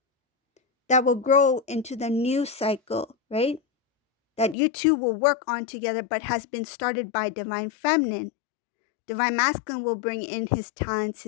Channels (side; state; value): right; drops out; at 4.5 s